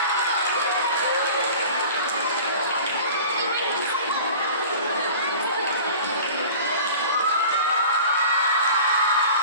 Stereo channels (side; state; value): both; inverted; correlation -0.41